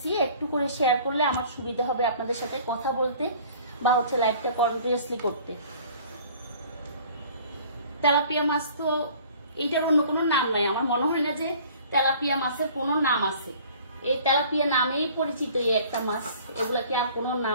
একটু করে শেয়ার করলে আমার সুবিধা হবে আপনাদের সাথে কথা বলতে বা হচ্ছে লাইভটা কন্টিনিউয়াসলি করতে। তেলাপিয়া মাছ তো এইটার অন্য কোনো নাম নাই, আমার মনে হয় না যে তেলাপিয়া মাছের কোনো নাম আছে। এই তেলাপিয়া নামেই পরিচিত এই একটা মাছ, এগুলাকে আর কোনো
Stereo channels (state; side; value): inverted; both; correlation -0.50